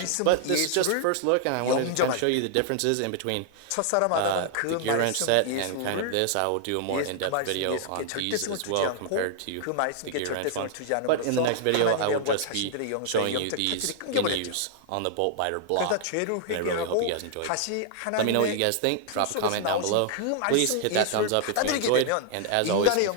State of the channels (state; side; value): different; both; correlation 0.00